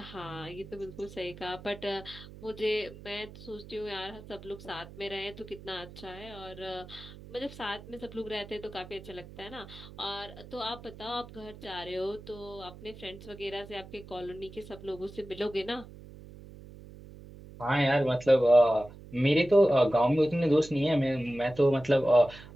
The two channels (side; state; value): right; noise; hum, 17 dB below the sound